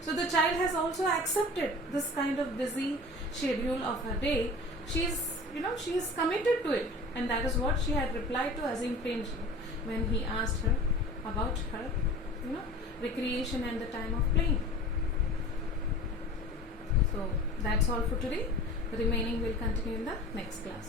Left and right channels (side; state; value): both; normal; correlation 0.39